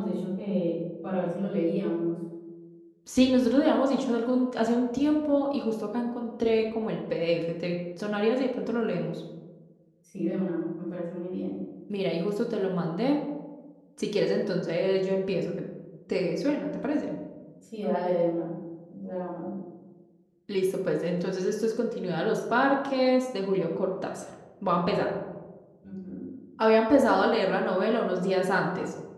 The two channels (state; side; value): identical; both; correlation 1.00